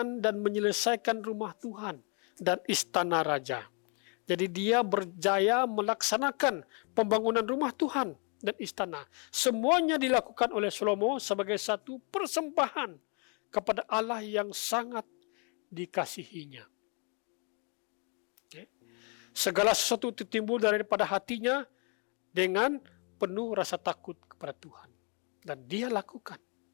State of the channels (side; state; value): right; quieter; 36.4 dB